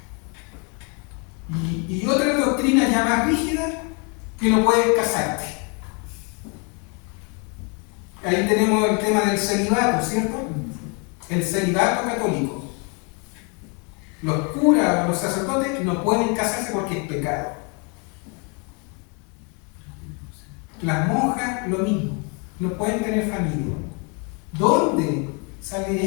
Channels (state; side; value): quieter; right; 34.6 dB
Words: Y otra doctrina ya más rígida, que no puedes casarte. Ahí tenemos el tema del celibato, ¿cierto? El celibato católico. Los curas o los sacerdotes no pueden casarse porque es pecado. Las monjas, lo mismo. No pueden tener familia. ¿Dónde sale